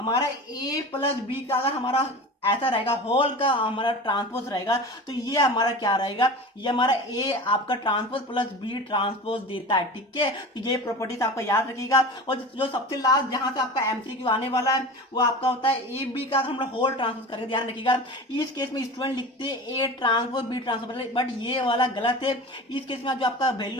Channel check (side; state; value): both; normal; correlation 0.33